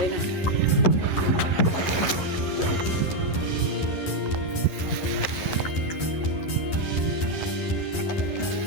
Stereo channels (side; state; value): right; late; 11 ms